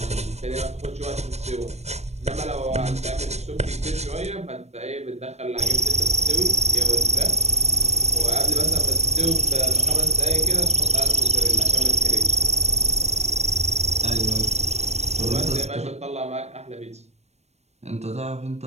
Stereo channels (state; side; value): late; left; 0.31 ms